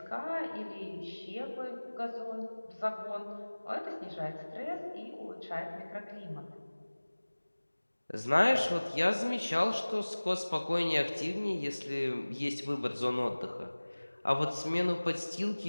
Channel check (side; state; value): both; inverted; correlation -1.00